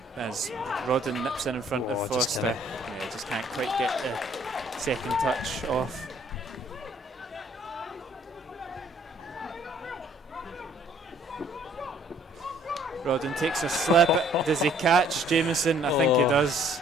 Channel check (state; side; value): normal; both; correlation 0.60